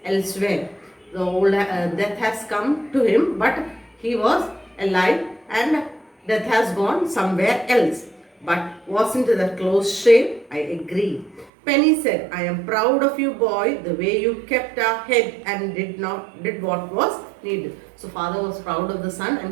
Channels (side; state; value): left; drops out; at 11.5 s